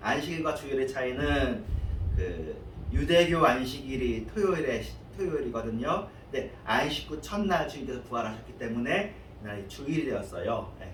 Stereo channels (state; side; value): identical; both; correlation 1.00